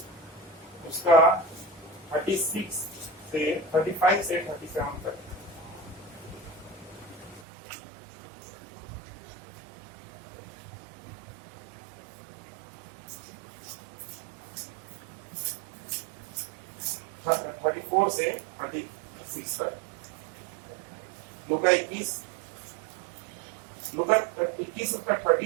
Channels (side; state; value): left; drops out; at 7.5 s